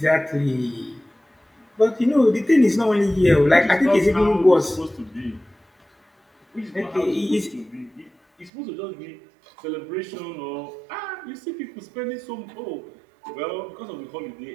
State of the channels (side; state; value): left; drops out; at 8.5 s